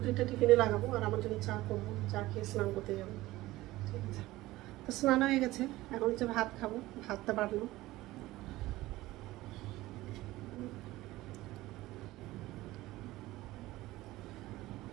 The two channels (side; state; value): left; quieter; 17.7 dB